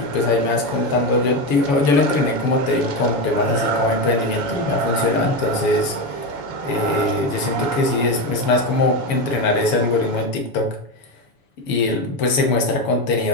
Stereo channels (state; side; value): late; right; 7.1 ms